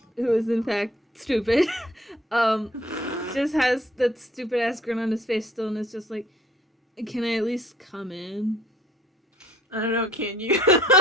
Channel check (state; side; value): normal; both; correlation 0.58